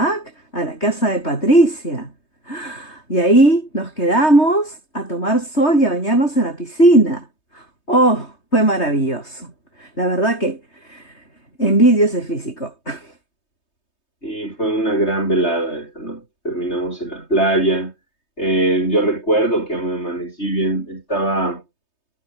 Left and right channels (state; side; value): late; right; 3.2 ms